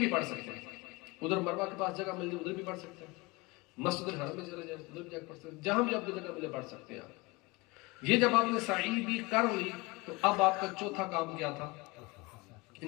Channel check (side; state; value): right; quieter; 24.3 dB